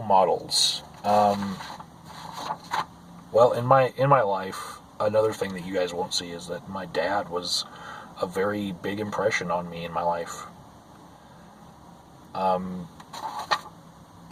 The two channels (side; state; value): both; identical; correlation 1.00